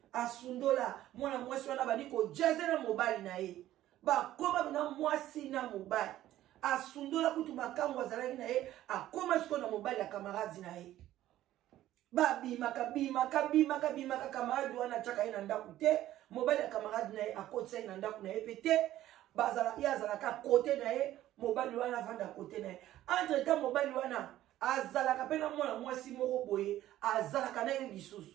asundola mwana mwasi wana bani ko jaze na mobali na ye ba koma na mwasi na mobali asundola kutu makambo azalaki na ye akoma siko na mobali ya camarade na ye ba bimaka camarade wana chaka ina ndaku te mobali ya camarade na ye akotsa ina ndaku na ye pete bazala ya zalaka côté na ye mobali wana vanda côté na ye entre temps mobali wana azalaka pena mwana mwasi moko boye azalaka na ye lisusu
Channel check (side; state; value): left; quieter; 13.7 dB